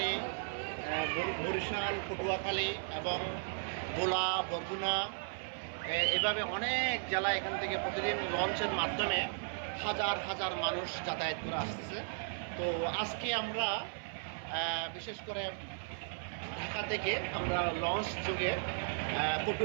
পটুয়াখালী এবং ভোলা, বরগুনা, এভাবে অনেক জেলা এখান থেকে প্রতিদিন লঞ্চের মাধ্যমে হাজার হাজার মানুষ যাতায়াত করে আসতেছে। তো আজকে আমরা বিশেষ করে ঢাকা থেকে আমরা লঞ্চ যোগে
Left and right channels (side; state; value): left; silent; 54 dB below the other